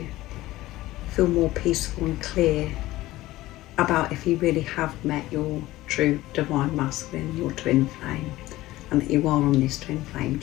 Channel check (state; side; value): quieter; right; 17.1 dB